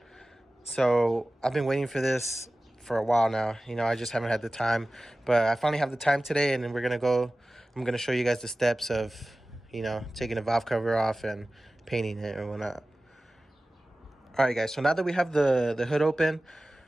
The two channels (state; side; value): normal; both; correlation 0.97